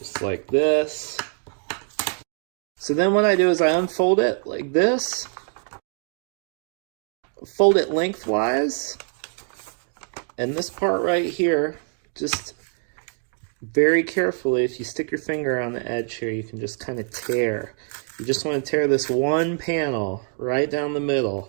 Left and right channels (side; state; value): left; silent; 56 dB below the other